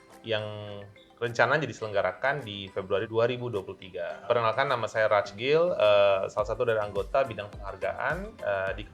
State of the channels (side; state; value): both; identical; correlation 1.00